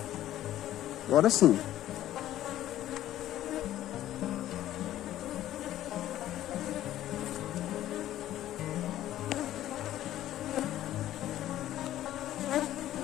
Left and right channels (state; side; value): quieter; right; 13.2 dB